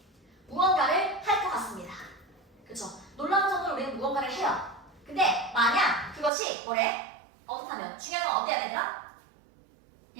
무언가를 할 것 같습니다. 그쵸? 놀라운 정도로 우리는 무언가를 해요. 근데 만약 그것이 뭐래? 어떻다면? 중요한 건 어때야 되더라?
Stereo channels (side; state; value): left; drops out; at 6.3 s